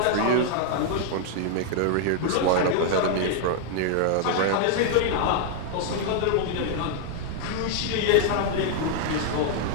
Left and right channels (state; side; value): different; both; correlation 0.00